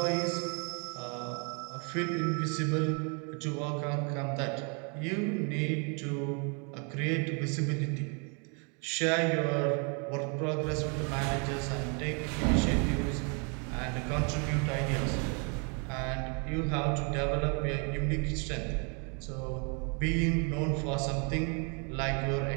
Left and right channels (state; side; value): quieter; left; 35.9 dB